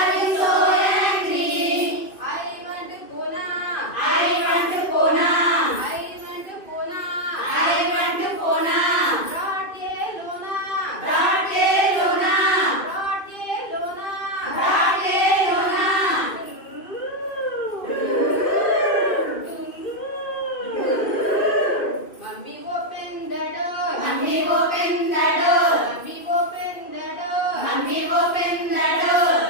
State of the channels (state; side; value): late; right; 2.5 ms